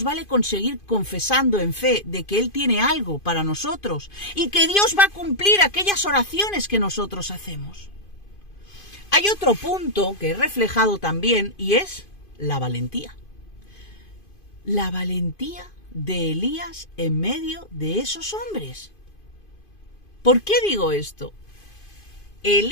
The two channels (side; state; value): right; late; 2.5 ms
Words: vale con seguir confesando en fe de que Él tiene algo para nosotros y que Dios va a cumplir aquellas oraciones que nosotros hacemos. Hay otro punto que he reflejado también y es la valentía. La valentía de Elías en medio de esos hombres. ¿Por qué digo esto?